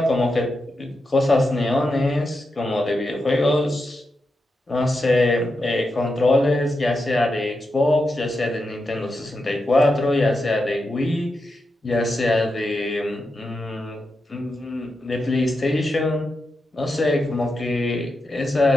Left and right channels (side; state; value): both; normal; correlation 0.87